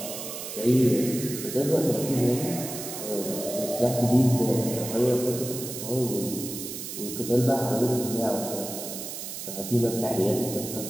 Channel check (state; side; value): noise; right; hiss, 8 dB below the sound